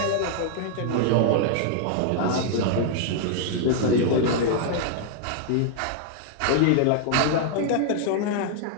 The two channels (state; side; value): different; both; correlation -0.01